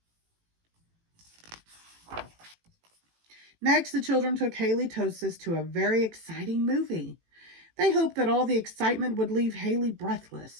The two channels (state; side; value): late; left; 18 ms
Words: Next, the children took Haley Tosis to a very exciting movie. They hoped that all the excitement would leave Haley